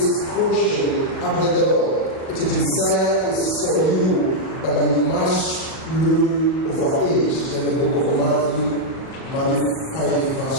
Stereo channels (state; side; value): late; right; 38 ms